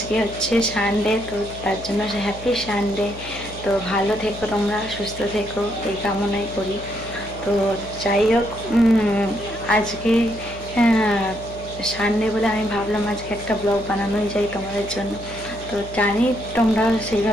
হচ্ছে সানডে, তো তার জন্য হ্যাপি সানডে। তো ভালো থেকো, তোমরা সুস্থ থেকো, এই কামনাই করি। তো যাই হোক, আজকে সানডে বলে আমি ভাবলাম আজকে একটা ব্লগ বানানোই যায় তোমাদের জন্য। তো জানি তোমরা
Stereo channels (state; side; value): noise; left; hum, 15 dB below the sound